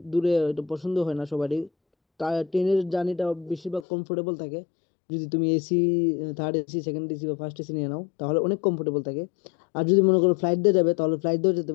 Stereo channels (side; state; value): right; drops out; at 3.9 s